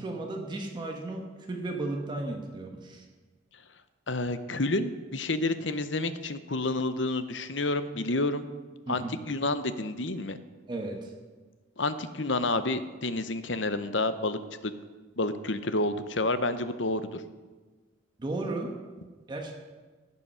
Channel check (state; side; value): normal; both; correlation 0.11